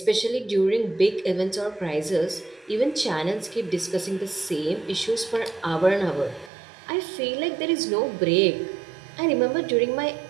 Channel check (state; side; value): drops out; left; at 6.5 s